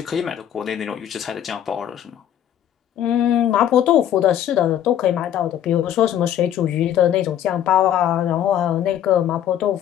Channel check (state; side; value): quieter; right; 10.6 dB